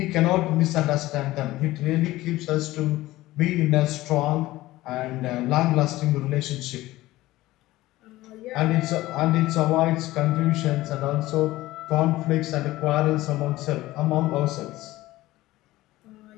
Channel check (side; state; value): right; quieter; 17.2 dB